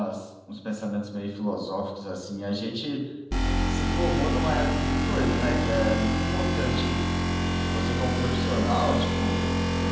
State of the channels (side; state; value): both; identical; correlation 1.00